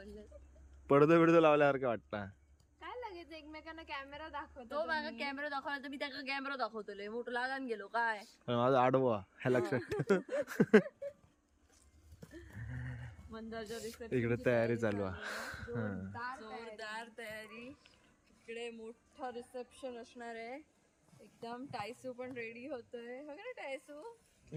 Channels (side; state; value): both; identical; correlation 1.00